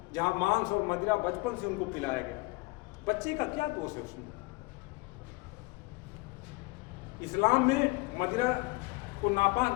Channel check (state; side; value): quieter; right; 24.2 dB